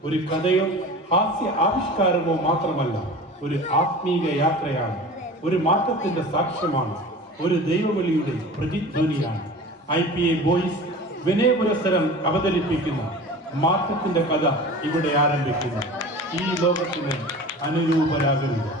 ഒരു കഥയോ ഹാസ്യ ആവിഷ്കാരമോ മാത്രമല്ല, ഒരു ആത്മീക യാത്രയാണ്, ഒരു മാറ്റത്തിന്റെ സാക്ഷ്യമാണ്, ഒരു ദൈവവിളിയുടെ പ്രതിധ്വനിയാണ്. IPA ബോയ്സ് വിനയപുരസ്സരം അവതരിപ്പിക്കുന്ന മാറ്റത്തിന്റെ കഥ ഇവിടെ ആരംഭിക്കുന്നു. ഈ ലോകത്തിന് അനുരൂപരാകരുത്.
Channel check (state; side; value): normal; both; correlation 0.37